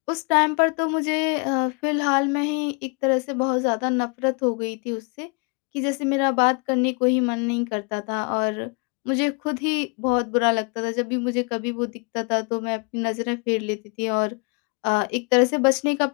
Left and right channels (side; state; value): right; quieter; 33.8 dB